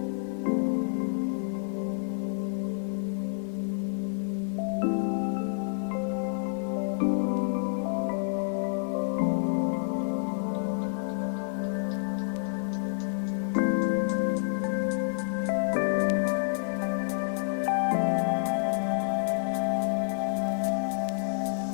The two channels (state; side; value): silent; right; digital silence